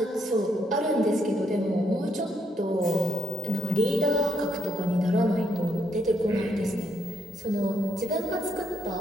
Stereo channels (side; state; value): both; normal; correlation 0.75